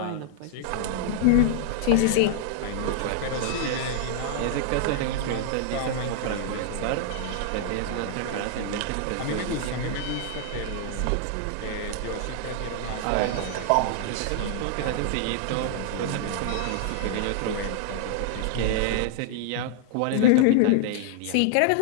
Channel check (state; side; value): different; both; correlation -0.01